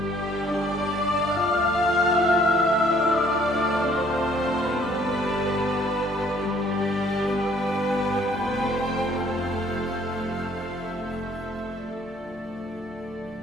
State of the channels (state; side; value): normal; both; correlation 0.61